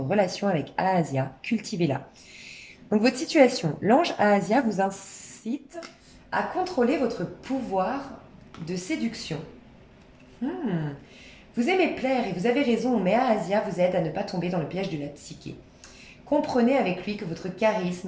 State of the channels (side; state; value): both; identical; correlation 1.00